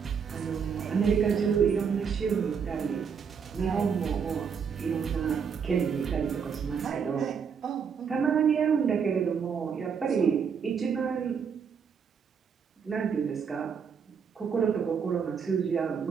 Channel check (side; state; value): left; quieter; 6.6 dB